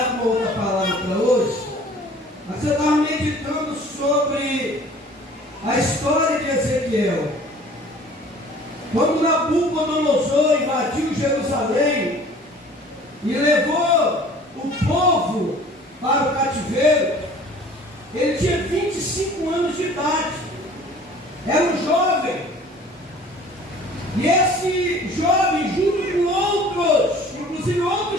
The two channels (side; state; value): both; normal; correlation 0.49